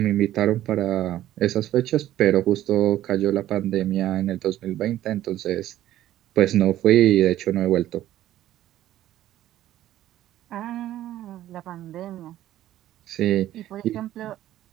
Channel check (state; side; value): quieter; left; 13.4 dB